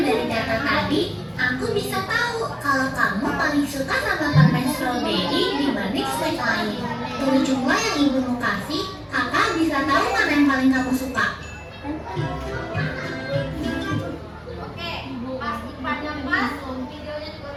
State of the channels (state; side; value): identical; both; correlation 1.00